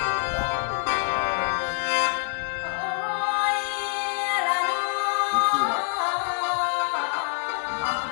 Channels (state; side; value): silent; right; digital silence